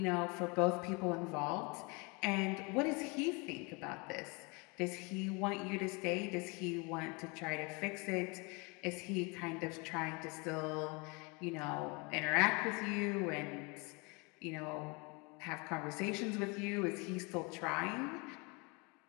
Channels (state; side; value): quieter; right; 29.4 dB